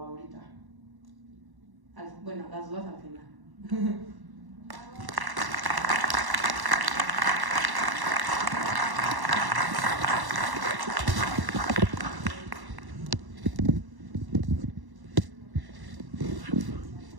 Bueno, las dudas al final.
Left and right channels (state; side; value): late; left; 1.1 ms